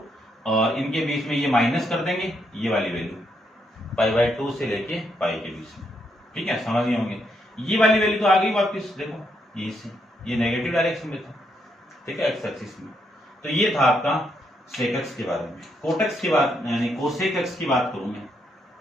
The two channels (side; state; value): both; normal; correlation 0.77